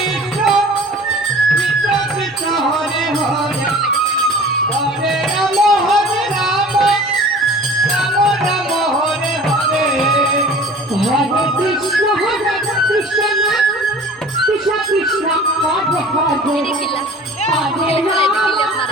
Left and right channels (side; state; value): both; normal; correlation 0.44